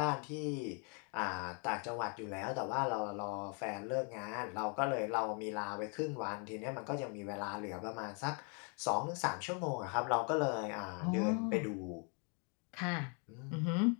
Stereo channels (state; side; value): quieter; right; 37.9 dB